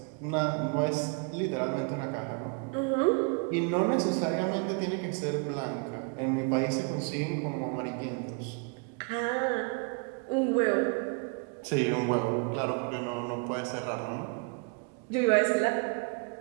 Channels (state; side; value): quieter; left; 34.9 dB